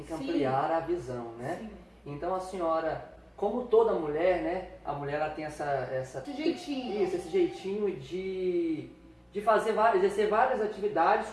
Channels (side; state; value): both; identical; correlation 1.00